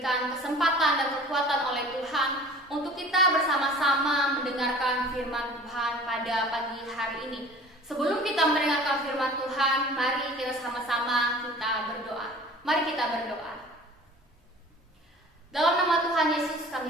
kesempatan dan kekuatan oleh Tuhan untuk kita bersama-sama mendengarkan firman Tuhan pada pagi hari ini. Sebelum kita mendengarkan firman Tuhan, mari kita sama-sama kita berdoa. Mari kita berdoa. Dalam nama Tuhan Yesus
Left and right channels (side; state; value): both; normal; correlation 0.44